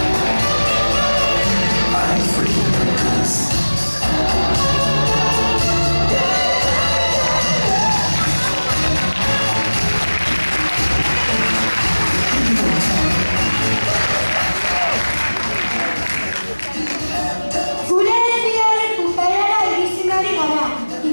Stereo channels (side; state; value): both; inverted; correlation -1.00